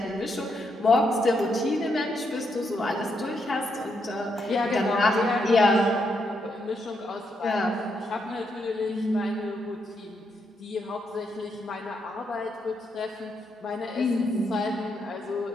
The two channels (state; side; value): normal; both; correlation 0.79